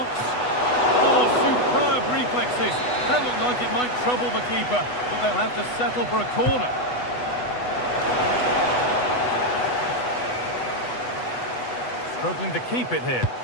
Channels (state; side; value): late; right; 8.1 ms